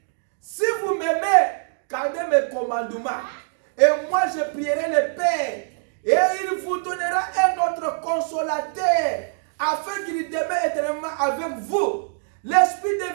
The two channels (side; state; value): left; silent; digital silence